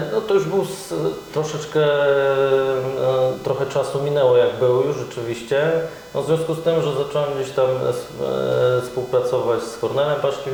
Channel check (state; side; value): identical; both; correlation 1.00